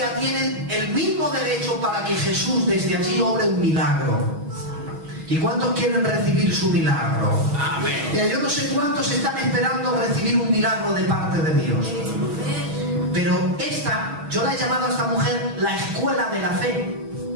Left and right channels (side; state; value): left; late; 6.3 ms